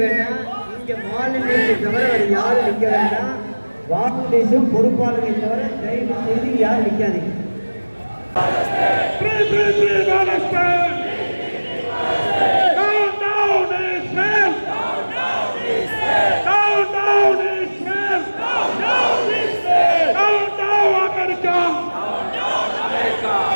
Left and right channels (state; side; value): inverted; both; correlation -1.00